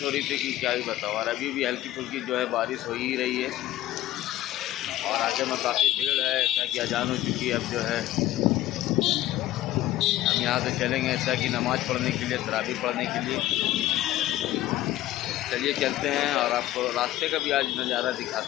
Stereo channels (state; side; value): quieter; right; 14.7 dB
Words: हो रही थी कि क्या ही बताओ। और अभी भी हल्की फुल्की जो है बारिश हो ही रही है और आगे में काफ़ी भीड़ है, ऐसा कि अजान हो चुकी है। अब जो है हम यहाँ से चलेंगे ऐसा कि नमाज़ पढ़ने के लिए, तरावी पढ़ने के लिए। चलिए चलते हैं और आपको रास्ते का भी आज नज़ारा